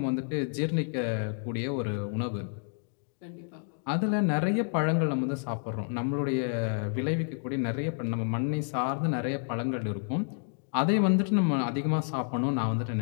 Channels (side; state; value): right; silent; 58 dB below the other